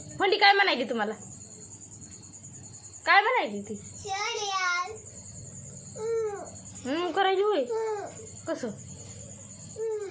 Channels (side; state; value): both; identical; correlation 1.00